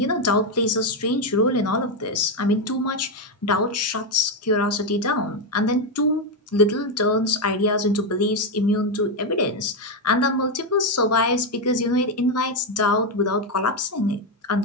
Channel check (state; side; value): normal; both; correlation 0.06